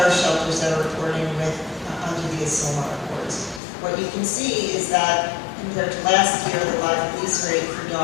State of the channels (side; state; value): right; drops out; at 3.6 s